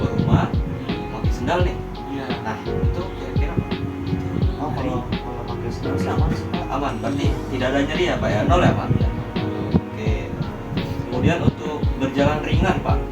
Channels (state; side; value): identical; both; correlation 1.00